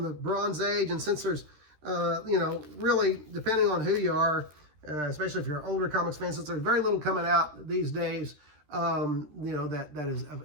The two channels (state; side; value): late; left; 13 ms